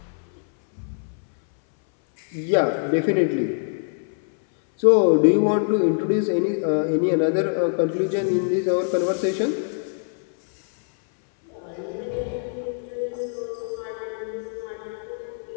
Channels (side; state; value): right; silent; 60 dB below the other